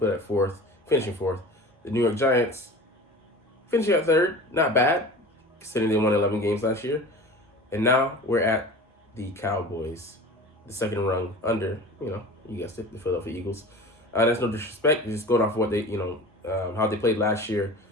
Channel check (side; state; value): both; normal; correlation 0.37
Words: at fourth, finishing fourth. The New York Giants, finishing at third, not bad, considering they won 11 games last year. And now we're at the Cowboys, the second rung under, you guessed it, the Philadelphia Eagles. That's no disrespect, just going off of what they, how they played last year